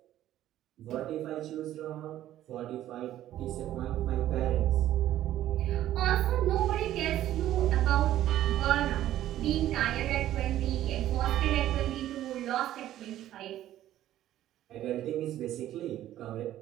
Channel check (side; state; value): left; quieter; 13.0 dB